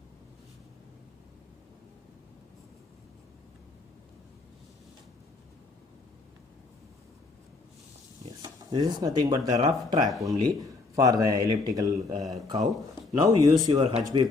Yes, this is nothing but the rough track only for the elliptical curve. Now use your HB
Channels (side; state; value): right; quieter; 3.7 dB